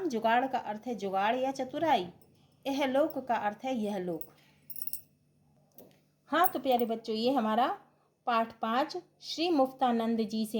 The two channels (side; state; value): both; identical; correlation 1.00